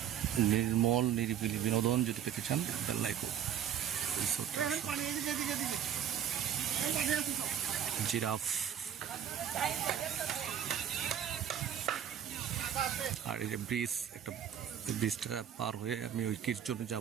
নির্মল নিরিবিলি বিনোদন যদি পেতে চান বেল্লাইকো জিরাফ। আর এই যে ব্রিজ, একটা ব্রিজটা পার হয়ে আমি ওই কিরচনে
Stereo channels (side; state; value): left; quieter; 9.4 dB